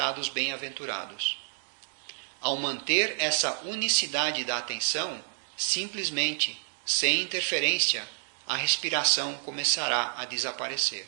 bem-aventurados. Ao manter essa unicidade da atenção, simplesmente, sem interferência, a respiração começará a desaparecer.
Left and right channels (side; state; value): left; silent; digital silence